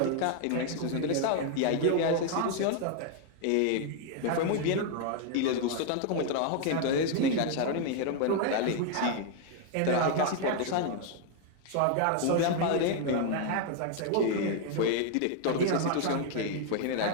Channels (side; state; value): both; different; correlation 0.00